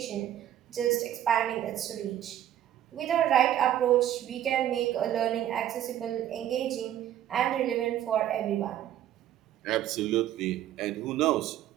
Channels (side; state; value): left; quieter; 11.8 dB